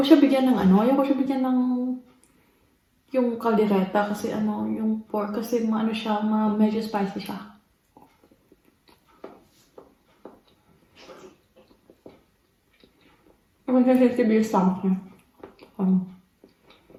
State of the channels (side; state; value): both; identical; correlation 1.00